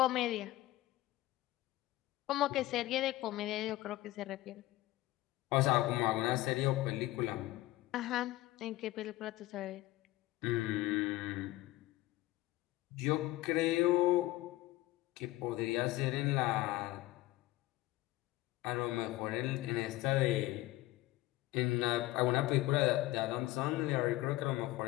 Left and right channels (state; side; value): quieter; right; 17.6 dB